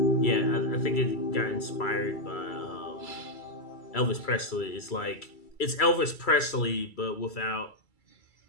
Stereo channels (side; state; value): right; late; 2.3 ms